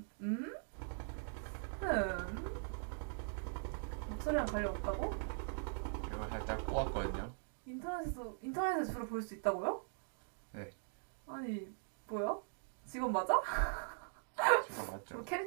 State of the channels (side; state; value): left; silent; digital silence